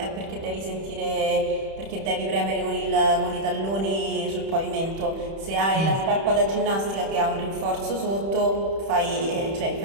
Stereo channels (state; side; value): late; left; 31 ms